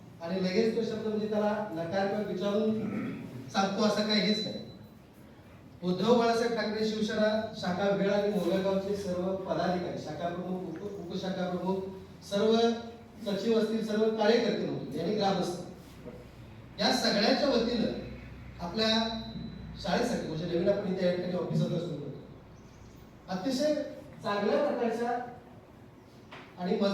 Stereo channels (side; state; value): both; identical; correlation 1.00